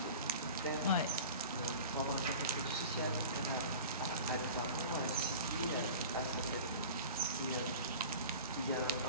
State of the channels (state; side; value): inverted; both; correlation -0.38